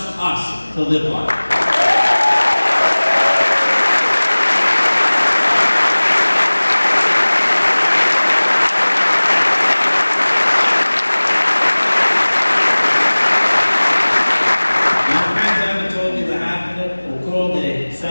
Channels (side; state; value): both; inverted; correlation -1.00